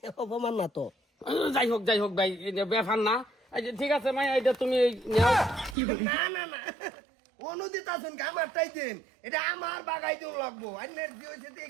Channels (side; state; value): left; drops out; at 5.8 s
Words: অপমান না তো যাই হোক ভাই এটা ব্যাপার না এই যে ঠিক আছে মাই এটা তুমি নাও না অনুদিত আছেন আমার টাই দিন এটা আমার বাগাই দিন লাগবো আন্নের জি হইছে দিয়ে